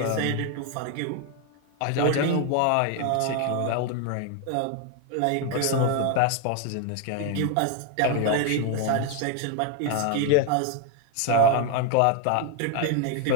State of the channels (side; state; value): both; different; correlation 0.01